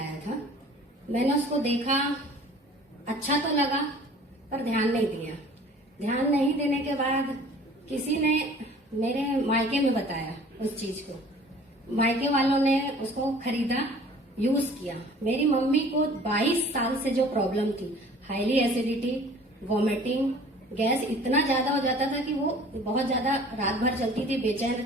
था। मैंने उसको देखा, अच्छा तो लगा पर ध्यान नहीं दिया। ध्यान नहीं देने के बाद किसी ने मेरे मायके में बताया उस चीज को। मायके वालों ने उसको खरीदा, यूज किया। मेरी मम्मी को 22 साल से जो प्रॉब्लम थी, हाईली एसिडिटी, वॉमिटिंग, गैस इतना ज्यादा हो जाता था कि वो बहुत ज्यादा रात भर चलती थी, बेचैन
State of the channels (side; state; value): both; normal; correlation 0.49